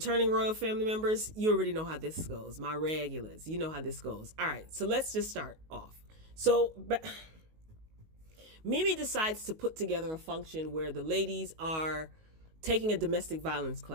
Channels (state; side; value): late; left; 19 ms